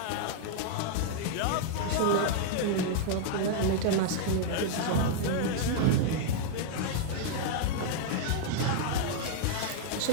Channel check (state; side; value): different; both; correlation -0.01